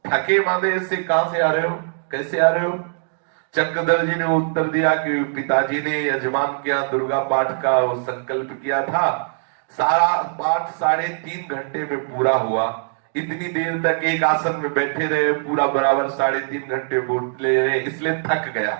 थके मांदे से कहां से आ रहे हो, कैसे आ रहे हो। चक्रधर जी ने उत्तर दिया कि पिताजी ने यजमान के यहाँ दुर्गा पाठ का वो संकल्प किया था, सारा पाठ 3.5 घंटे में पूरा हुआ। इतनी देर तक एक आसन में बैठे रहे, पूरा बराबर 3.5 घंटे बोले रहे, इसलिए थक गया।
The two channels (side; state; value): left; silent; digital silence